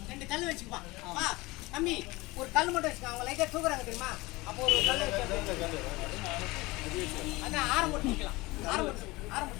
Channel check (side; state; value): right; quieter; 21.9 dB